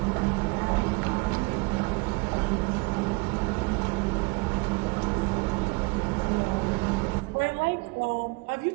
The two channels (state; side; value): quieter; left; 27.7 dB